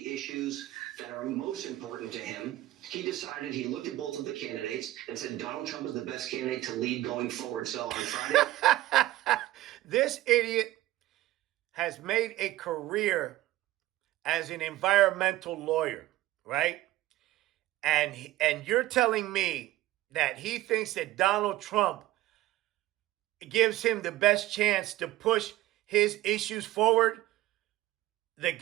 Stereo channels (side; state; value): left; quieter; 15.9 dB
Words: issues that are most important to him, he decided, he looked at both of the candidates and said Donald Trump is the best candidate to lead going forward. So on Friday. This idiot has made a career as an environmental lawyer, right? And you're telling me that he thinks that Donald Trump gives him the best chance to push his issues forward? The